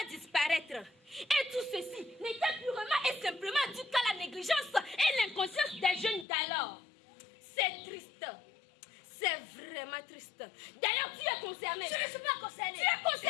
disparaître. Et tout ceci n'était purement et simplement dû qu'à la négligence et l'inconscience des jeunes d'alors. C'est triste. C'est vraiment triste. D'ailleurs, tu es concerné. Je ne suis pas concerné. Tu es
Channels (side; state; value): right; drops out; at 6.2 s